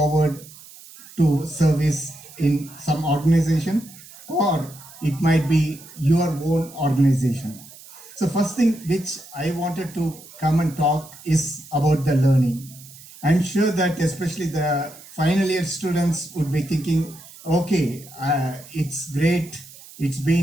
to service in some organization, or it might be your own organization. So first thing which I wanted to come and talk is about the learning. I'm sure that especially the final year students would be thinking, okay, it's great, it's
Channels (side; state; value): right; noise; hiss, 19 dB below the sound